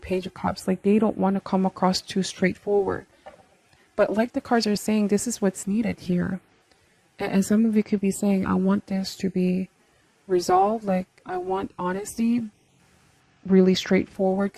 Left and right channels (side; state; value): both; identical; correlation 1.00